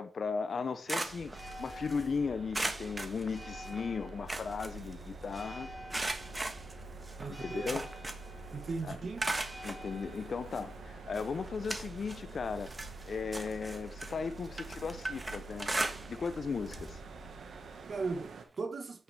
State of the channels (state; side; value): normal; both; correlation 0.88